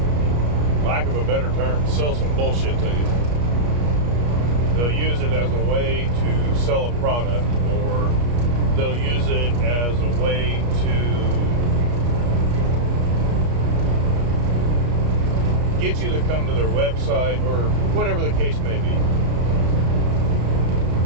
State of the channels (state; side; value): late; left; 33 ms